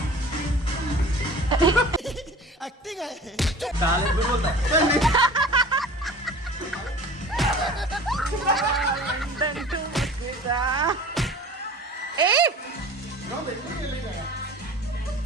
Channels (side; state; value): both; normal; correlation 0.41